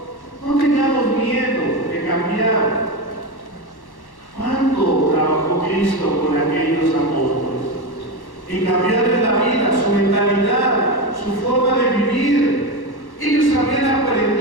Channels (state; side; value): late; right; 1.1 ms